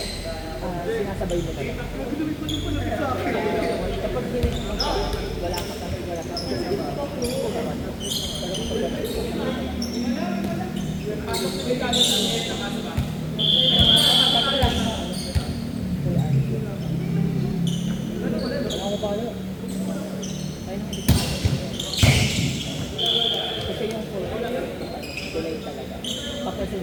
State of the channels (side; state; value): both; identical; correlation 1.00